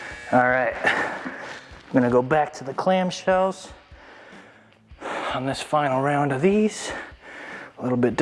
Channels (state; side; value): identical; both; correlation 1.00